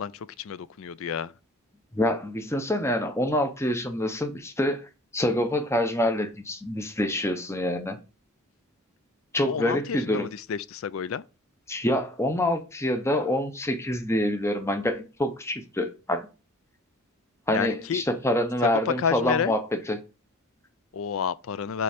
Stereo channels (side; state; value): both; normal; correlation 0.48